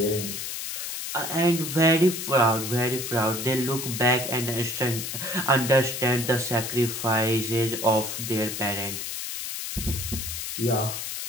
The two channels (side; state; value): left; noise; hiss, 5 dB below the sound